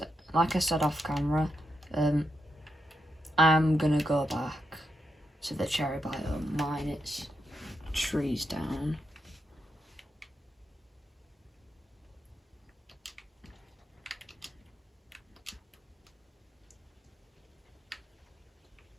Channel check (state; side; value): normal; both; correlation 0.83